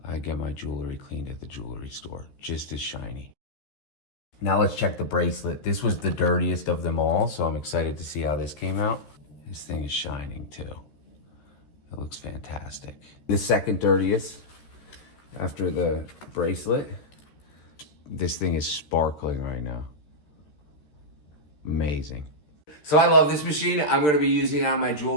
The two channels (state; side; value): late; right; 13 ms